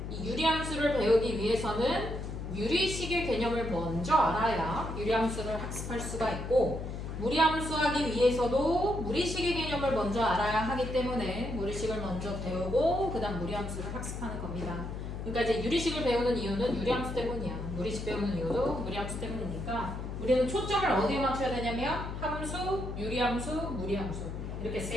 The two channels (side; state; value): left; noise; hum, 6 dB below the sound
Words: 이 유리함수를 배우기 위해서는 유리식의 개념을 먼저 알아야 유리함수를 학습할 수가 있고, 무리함수 하기 위해서도 무리식의 개념을 먼저 알아야 하기 때문에 무리식을 먼저 배우고 그 다음 무리함수를 학습하는 겁니다. 그러니까 이제 유리식을 배우는 이유는 유리함수 때문이야. 무리식 배우는 이유도 무리함수 때문이니까 우리는 초점을 어디에 맞춰야 되냐면 함수, 유리함수, 무리함수 이렇게